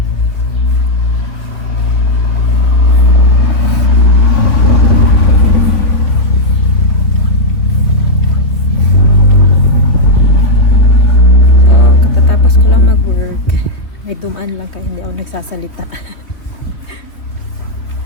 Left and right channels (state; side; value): late; right; 3.4 ms